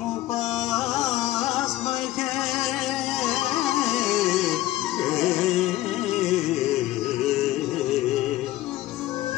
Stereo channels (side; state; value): right; quieter; 15.9 dB